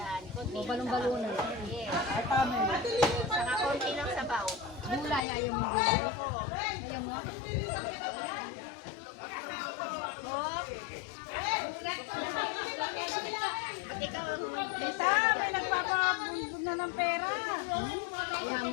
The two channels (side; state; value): right; drops out; at 5.2 s